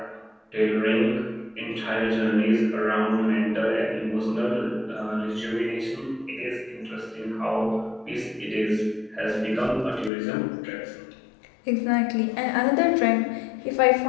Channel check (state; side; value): drops out; right; at 10.1 s